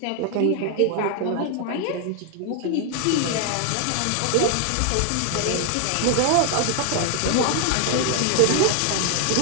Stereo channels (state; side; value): different; both; correlation 0.00